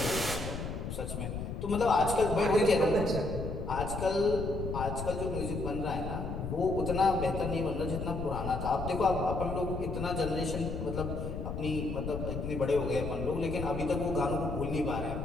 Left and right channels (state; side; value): noise; left; rumble, 5 dB below the sound